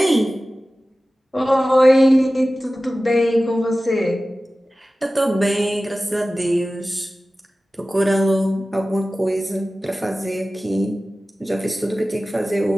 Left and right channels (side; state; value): both; normal; correlation 0.96